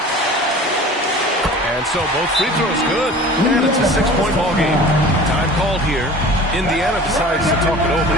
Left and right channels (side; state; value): both; normal; correlation 0.41